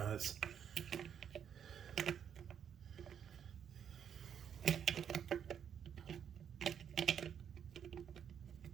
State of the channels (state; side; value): quieter; left; 8.3 dB